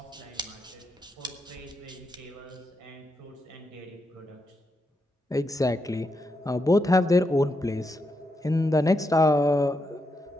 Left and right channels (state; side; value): normal; both; correlation 0.83